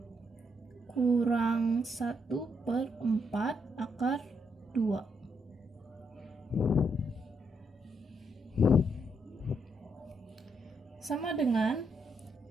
kurang 1/4 akar 2. Sama dengan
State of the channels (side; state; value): both; normal; correlation 0.77